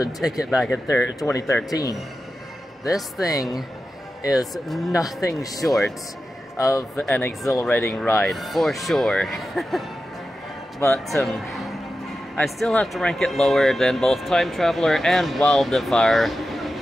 ticket back in 2013. This thing is nothing short of an exhilarating ride, for sure. But, I still have to rank it lower than both Time Traveler and Wildfire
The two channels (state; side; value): normal; both; correlation 0.92